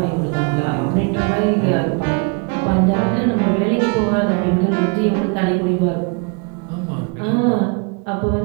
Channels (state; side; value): quieter; left; 32.1 dB